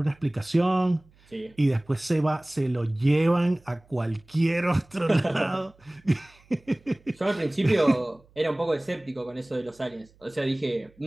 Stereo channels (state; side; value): noise; right; hum, 30 dB below the sound